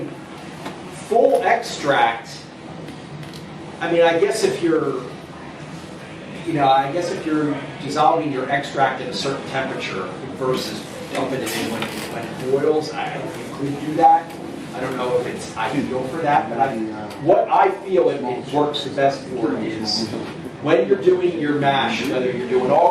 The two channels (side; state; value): both; identical; correlation 1.00